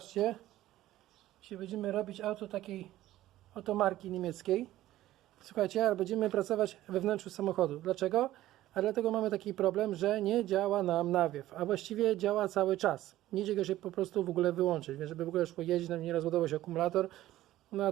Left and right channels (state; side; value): quieter; left; 14.8 dB